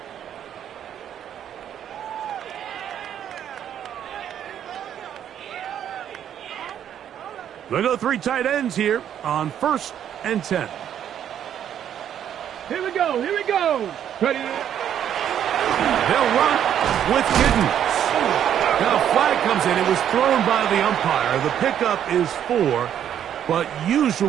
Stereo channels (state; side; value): quieter; left; 9.8 dB